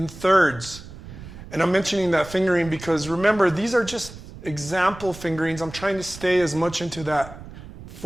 thirds. And I'm mentioning that fingering because remember, these are just example fingerings. I'm trying to stay as much into that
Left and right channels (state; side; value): noise; right; rumble, 15 dB below the sound